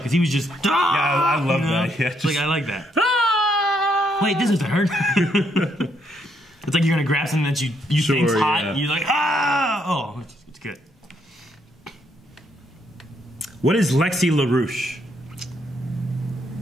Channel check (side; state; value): both; normal; correlation 0.74